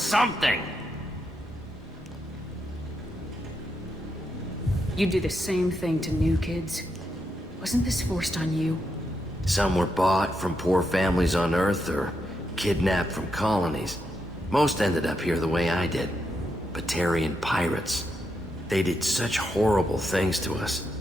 You do the same thing to new kids. Wasn't this forced on you? Some were bought from poor families on Earth or kidnapped from colonies. Most ended up here the way I did. Batarian pirates. They did such horrible things to us.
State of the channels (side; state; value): both; normal; correlation 0.83